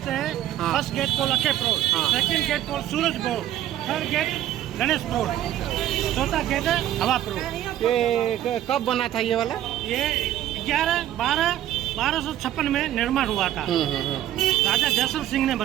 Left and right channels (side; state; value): left; quieter; 12.5 dB